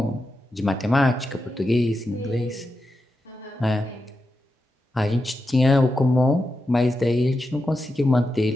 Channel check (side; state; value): both; normal; correlation 0.88